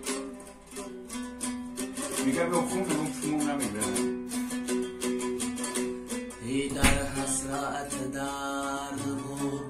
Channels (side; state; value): both; identical; correlation 1.00